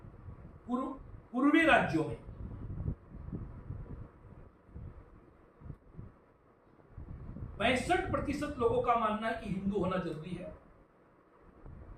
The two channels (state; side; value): identical; both; correlation 1.00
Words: पूर्वी राज्यों में 65% लोगों का मानना है कि हिंदू होना जरूरी है,